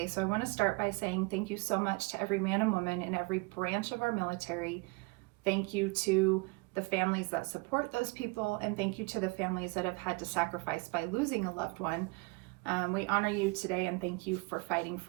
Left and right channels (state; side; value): quieter; left; 28.1 dB